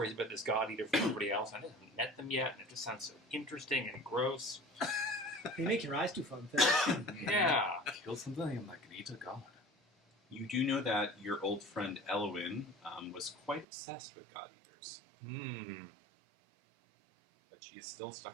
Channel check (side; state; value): left; drops out; at 13.7 s